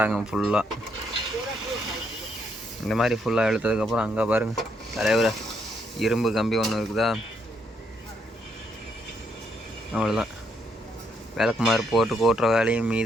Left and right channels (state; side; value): normal; both; correlation 0.75